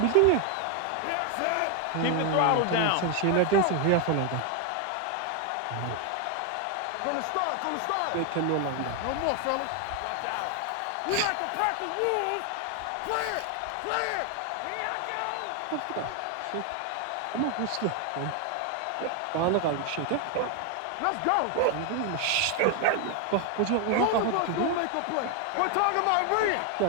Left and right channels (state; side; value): different; both; correlation 0.01